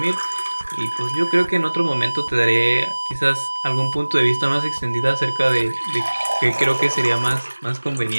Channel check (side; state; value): both; inverted; correlation -1.00